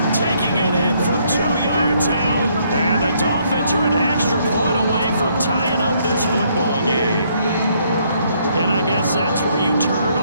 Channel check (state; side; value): inverted; both; correlation -0.69